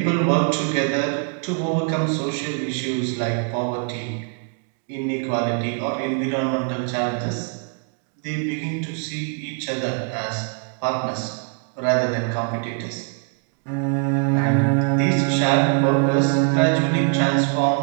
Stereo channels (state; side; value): quieter; left; 37.0 dB